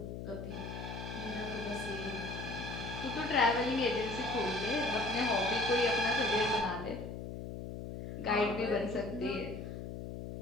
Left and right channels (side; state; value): left; noise; hum, 7 dB below the sound